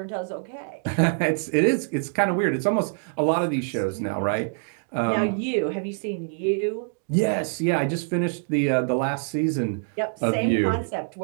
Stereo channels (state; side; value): silent; left; 62 dB below the other